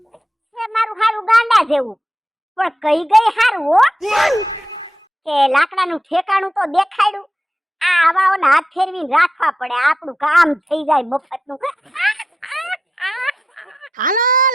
મારું હારું ગાંડા જેવું પણ કઈ ગઈ હારું હો કે લાકડાનું ઠેકાણું તો દેખાડ્યું. આ આવાઓના હાથ ફેરવીને રાખવા પડે, આપણું કામ થઈ જાય મફતનું. હાલો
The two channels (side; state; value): both; normal; correlation 0.88